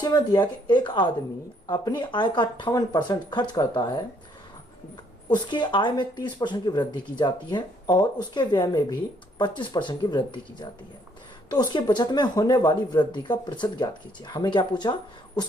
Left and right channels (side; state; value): both; normal; correlation 0.67